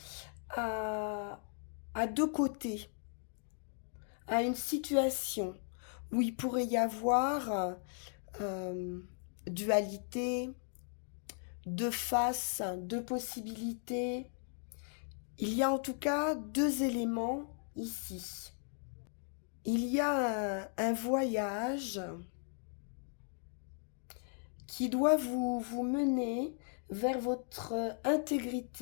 à, à deux côtés, à une situation où il pourrait y avoir euh, dualité, deux faces, deux possibilités. Il y a en tout cas deux éléments ici. Il y a un voyage qui doit vous mener vers votre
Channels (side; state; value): right; silent; 53 dB below the other